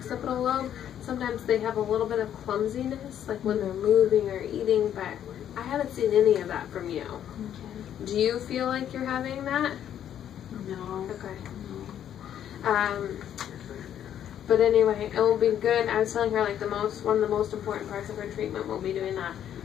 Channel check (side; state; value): right; quieter; 10.2 dB